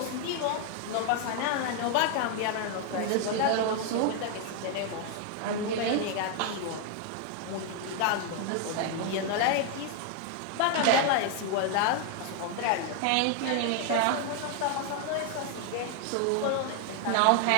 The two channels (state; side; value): different; both; correlation 0.00